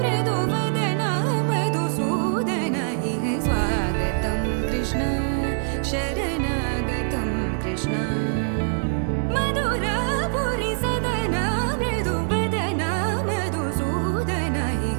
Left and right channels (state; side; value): silent; left; digital silence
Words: मृदुवदन मधुसूदन इह स्वागतं कृष्ण शरणागतं कृष्ण मधुरापुरी सदन मृदुवदन मधुसूदन